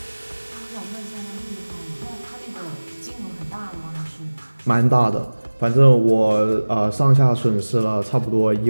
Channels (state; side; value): inverted; both; correlation -1.00